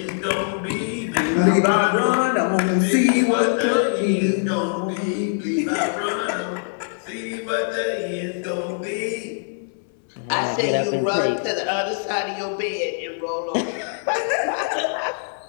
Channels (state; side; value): silent; right; 61 dB below the other